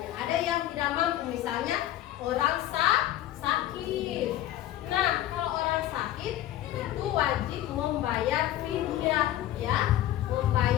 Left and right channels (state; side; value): quieter; right; 13.4 dB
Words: Ada yang tidak mampu, misalnya orang sakit. Nah, kalau orang sakit itu wajib membayar fidyah, ya,